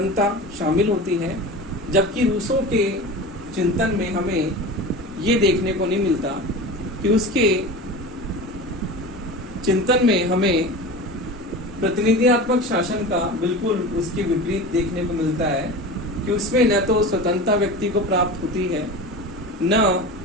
शामिल होती है। जबकि रूसो के चिंतन में हमें ये देखने को नहीं मिलता कि उसके चिंतन में हमें प्रतिनिधियात्मक शासन का बिल्कुल उसके विपरीत देखने को मिलता है कि उसमें न तो स्वतंत्रता व्यक्ति को प्राप्त होती है, न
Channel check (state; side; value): normal; both; correlation 0.31